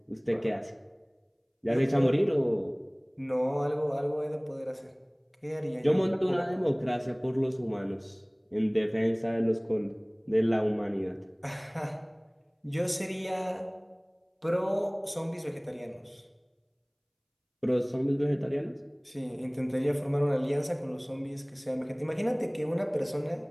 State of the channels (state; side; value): identical; both; correlation 1.00